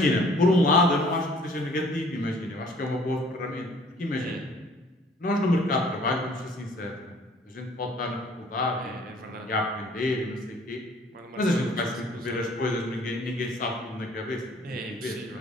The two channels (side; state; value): both; normal; correlation 0.56